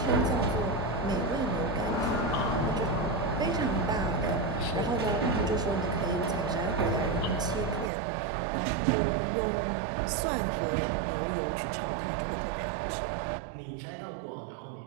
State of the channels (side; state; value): left; drops out; at 7.9 s